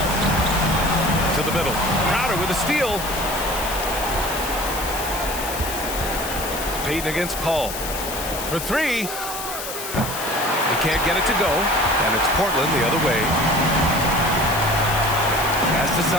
To the middle. Crowder with a steal. Payton against Paul. For three. He can't get it to go. And it's Portland the other way. Pass to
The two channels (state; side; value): noise; left; hiss, 8 dB below the sound